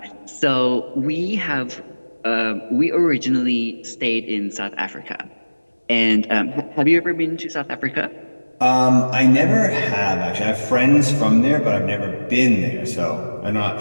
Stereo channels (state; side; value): inverted; both; correlation -1.00